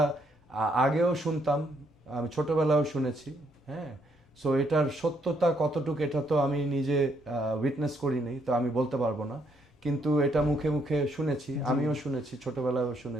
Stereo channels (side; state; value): both; normal; correlation 0.72